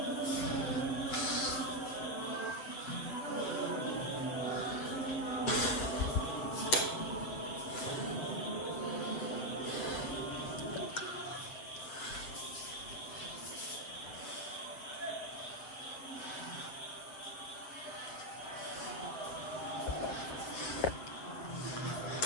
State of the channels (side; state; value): right; late; 7.8 ms